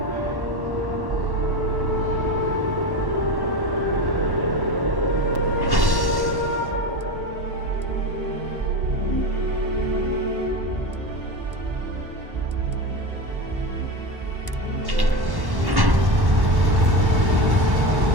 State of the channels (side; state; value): left; late; 1.1 ms